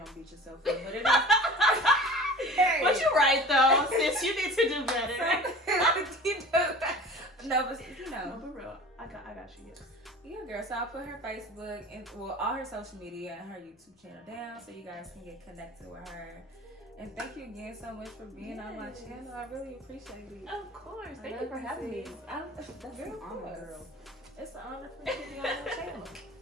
beat yourself up, but it is. Hey. But you're right though, sis, you need to do better. No, but you know, no, for real, I got you. Yes. Yeah, girl. So I'll put her Facebook and all her social media and her YouTube channel down so you guys can get connected with her. And thank you again so much for being on my channel. I really appreciate it. Of course. Thank you for having me. That's an honor, girl. It's an honor for you to be on my channel.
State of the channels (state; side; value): normal; both; correlation 0.40